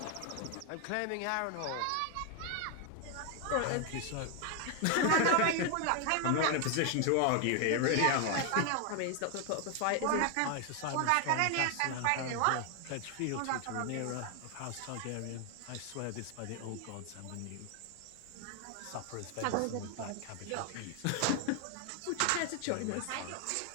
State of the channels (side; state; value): both; different; correlation 0.00